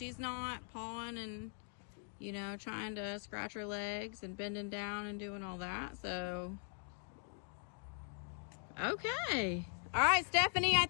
not pawing and, you know, trying to scratch her legs and bending down and doing all that. So, okay. All right, Stephanie, I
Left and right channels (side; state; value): right; silent; 51 dB below the other